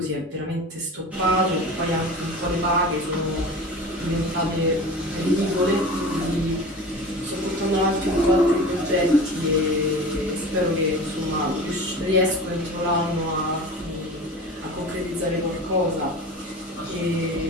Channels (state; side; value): normal; both; correlation 0.35